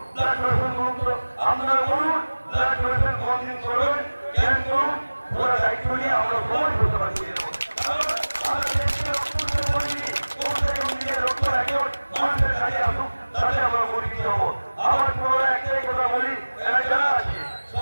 ব্লাড ডোনেশন করুন। তো আপনারা বলুন ব্লাড ডোনেশন কতদিন করবেন, কেন করুন, ওরা দায়িত্ব নিয়ে আমরা সবাই করতে পারছি। মানুষের কাজে আসুক, তাহলে আমরা পরিচিত হবো। আমার পুরো একটাই কথা বলি, যারা আছে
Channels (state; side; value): inverted; both; correlation -1.00